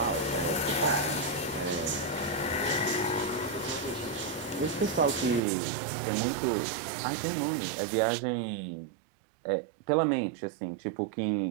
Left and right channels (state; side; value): drops out; left; at 5.4 s